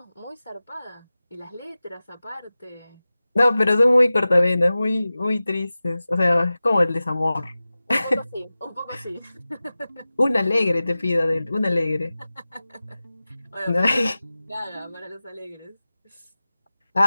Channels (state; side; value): inverted; both; correlation -0.96